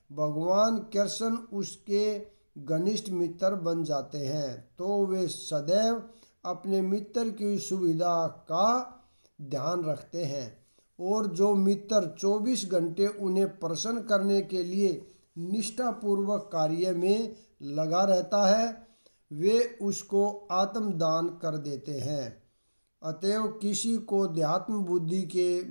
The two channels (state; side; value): inverted; both; correlation -1.00